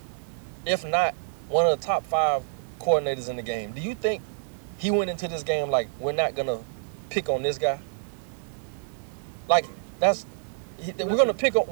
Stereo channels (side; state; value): left; silent; digital silence